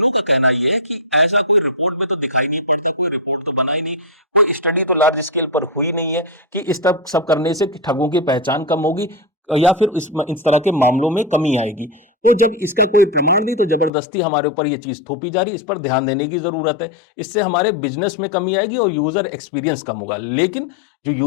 का कहना यह है कि ऐसा कोई रिपोर्ट में तो दिखाई नहीं पड़ता, कोई रिपोर्ट तो बना ही नहीं, कोई स्टडी तो लार्ज स्केल पर हुई नहीं है कि इस तरह सब करने से ठगों की पहचान कम होगी या फिर इस तरह के मामलों में कमी आएगी। तो जब इसका कोई प्रमाण नहीं, तो जबरदस्ती हमारे ऊपर ये चीज थोपी जा रही है। इस पर ध्यान देने की जरूरत है। इससे हमारे बिजनेस में कमी आएगी और यूजर एक्सपीरियंस कम होगा। लेकिन जो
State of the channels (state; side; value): drops out; right; at 13.9 s